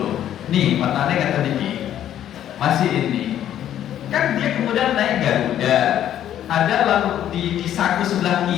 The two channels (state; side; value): quieter; right; 11.1 dB